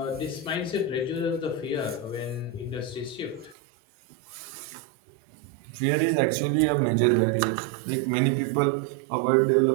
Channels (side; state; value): left; drops out; at 3.6 s